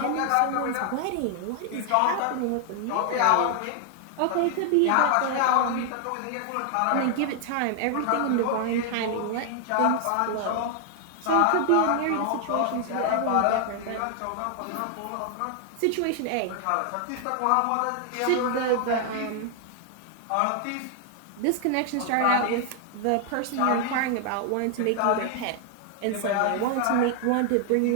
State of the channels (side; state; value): both; different; correlation 0.00